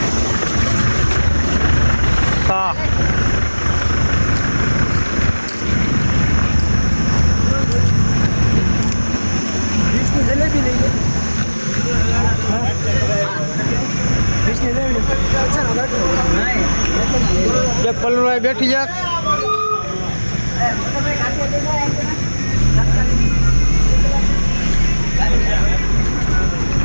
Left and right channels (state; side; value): inverted; both; correlation -1.00